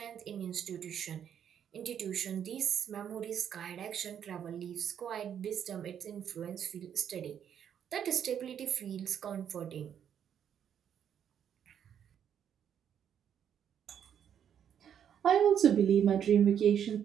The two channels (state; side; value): quieter; left; 8.9 dB